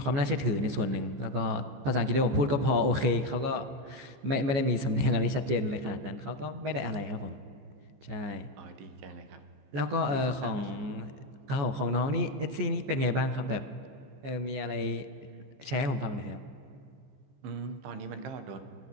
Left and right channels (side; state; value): left; late; 15 ms